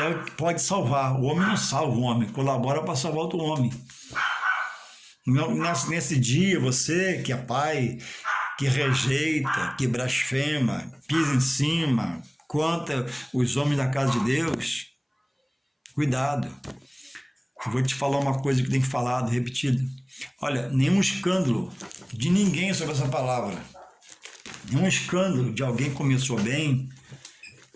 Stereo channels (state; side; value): identical; both; correlation 1.00